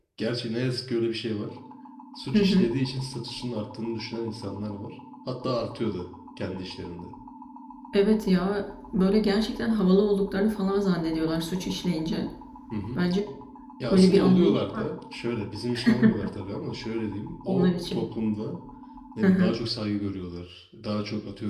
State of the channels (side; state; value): both; identical; correlation 1.00